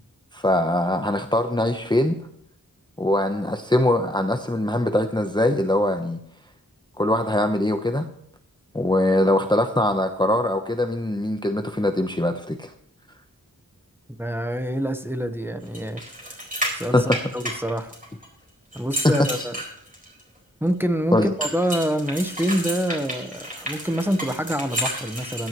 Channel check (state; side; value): normal; both; correlation 0.71